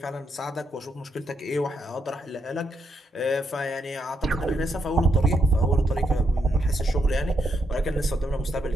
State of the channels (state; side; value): normal; both; correlation 0.78